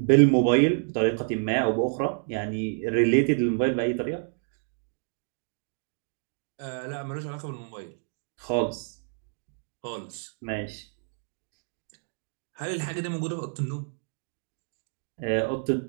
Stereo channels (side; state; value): left; silent; digital silence